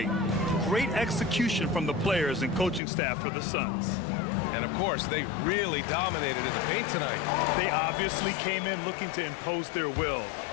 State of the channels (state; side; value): drops out; right; at 2.8 s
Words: Great execution from the players and coaching staff for the Suns. And of course, they really dominated in the paint tonight. They obviously came in looking to impose their will,